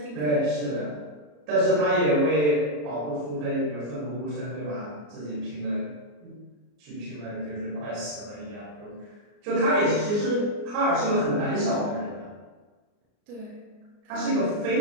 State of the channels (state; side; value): late; left; 34 ms